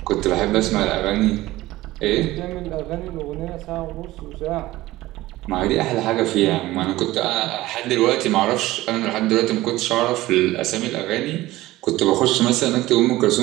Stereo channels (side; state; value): left; quieter; 17.4 dB